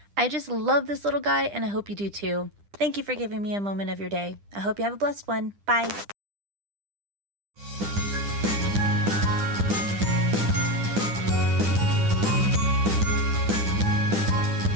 I just love this little guy, and I hope you do too. Thank you for giving me a moment of your day. I hope you have a blessed one. Bye.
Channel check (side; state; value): left; late; 10 ms